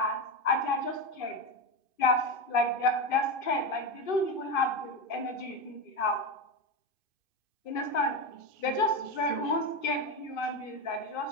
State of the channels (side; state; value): right; late; 2.6 ms